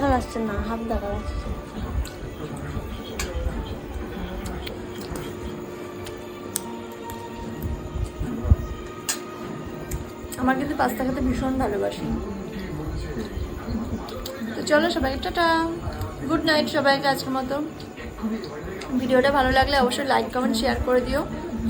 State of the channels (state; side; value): identical; both; correlation 1.00